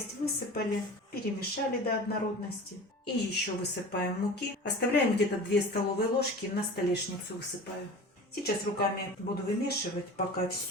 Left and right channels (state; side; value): normal; both; correlation 0.37